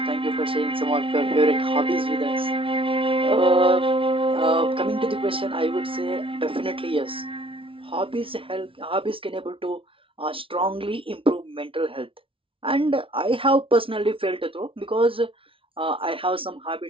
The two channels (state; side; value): late; left; 0.26 ms